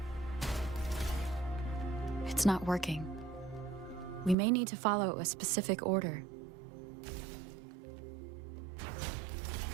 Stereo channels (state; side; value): drops out; left; at 4.4 s